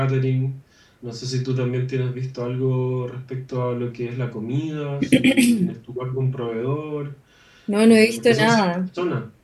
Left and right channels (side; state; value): both; identical; correlation 1.00